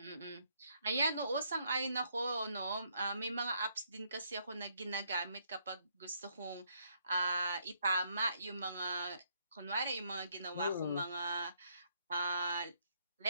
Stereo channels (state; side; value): inverted; both; correlation -0.72